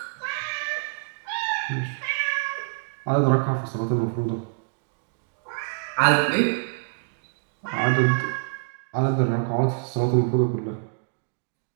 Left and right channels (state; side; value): silent; left; digital silence